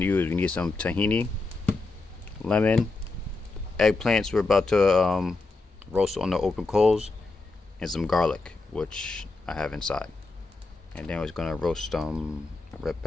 to use, we need some tahini, lemon, eggplants we're about to roast on the open coals, and some garlic, which I have inside. And then we're going to roast some red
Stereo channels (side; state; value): right; quieter; 3.5 dB